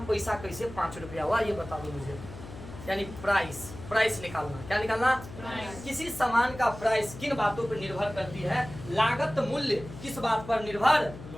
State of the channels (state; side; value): noise; left; hum, 14 dB below the sound